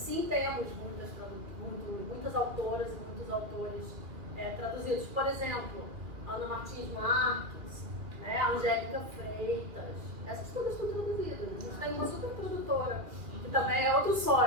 temos muitas autoras e muitos autores traduzidos. Por exemplo, Ana Martins Marques, né? Angélica Freitas, essas todas estão traduzidas. A gente tem uma super tradutora, que também é outro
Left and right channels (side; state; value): left; late; 2.2 ms